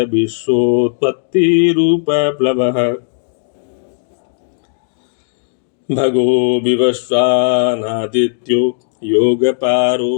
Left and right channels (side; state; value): right; silent; digital silence